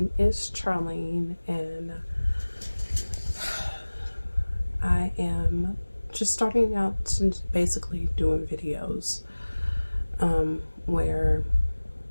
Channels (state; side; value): inverted; both; correlation -1.00